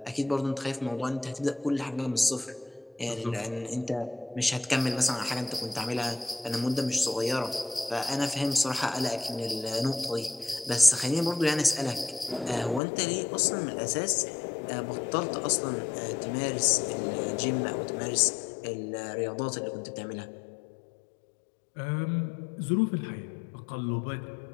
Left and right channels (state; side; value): drops out; right; at 12.8 s